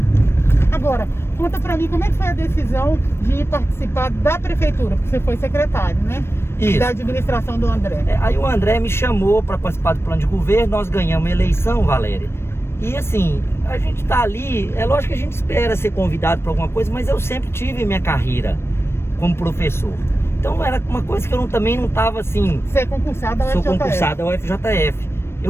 Agora, conta pra mim como é que foi a decisão de participar da prefeitura, porque você foi secretário, né? Isso. Da administração do André. Aí o André me chamou para participar do plano de governo, nós ganhamos a eleição, Valéria. E assim, a gente tá ali, é lógico que a gente espera ser convidado para alguma coisa, mas eu sempre tive minha carreira como professor. Então era uma coisa que eu também não estava assim... Você é concursado ao FJF. Sou concursado ao FJF.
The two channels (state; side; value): late; right; 0.12 ms